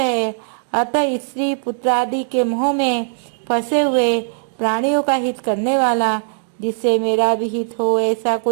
अतः स्त्री पुत्र आदि के मोह में फंसे हुए प्राणियों का हित करने वाला, जिससे मेरा भी हित हो, ऐसा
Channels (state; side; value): silent; left; digital silence